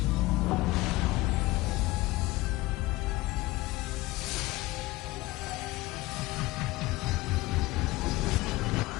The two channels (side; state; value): right; quieter; 19.6 dB